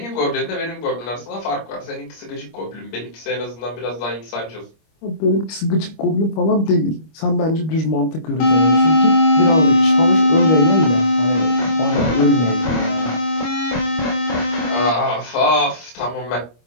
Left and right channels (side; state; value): right; late; 25 ms